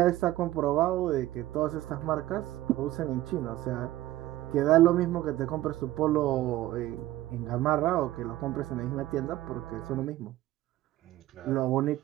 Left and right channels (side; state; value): left; quieter; 15.5 dB